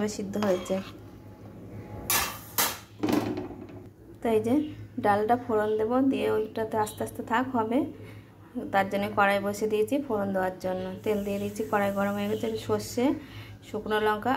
সিদ্ধ হয়েছে। তো এই যে ডালটা ফোড়ন দেবো, দিয়ে ওইটাতে আস্তে আস্তে থাক হবে, তার জন্য কড়াই বসে দিয়েছি ফোড়ন দেওয়ার জন্য। তেল দিয়ে দিয়েছি, কড়াই গরম হয়ে গেছে। সর্ষে, শুকনো লঙ্কা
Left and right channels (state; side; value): identical; both; correlation 1.00